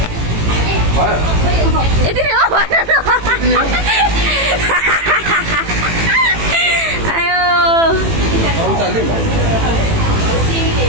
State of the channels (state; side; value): late; left; 18 ms